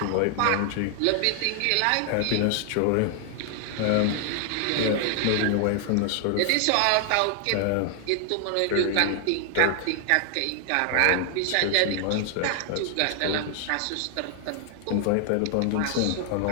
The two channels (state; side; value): different; both; correlation 0.00